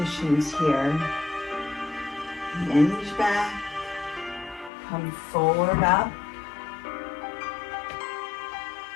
here. Hinge back. Come forward up.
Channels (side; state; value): right; drops out; at 4.7 s